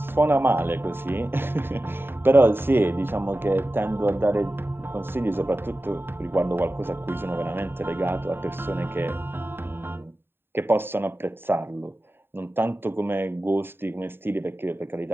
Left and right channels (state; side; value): late; left; 0.11 ms